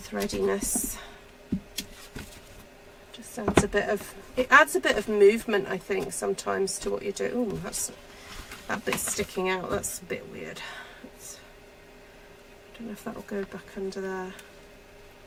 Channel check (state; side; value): identical; both; correlation 1.00